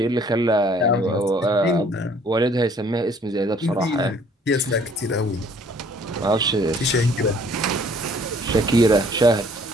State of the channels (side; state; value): both; normal; correlation 0.58